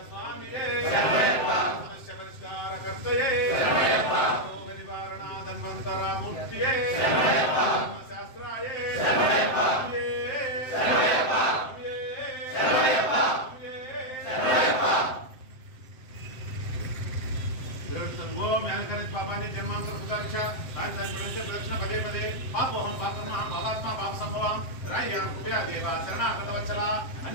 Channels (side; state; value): right; late; 7.7 ms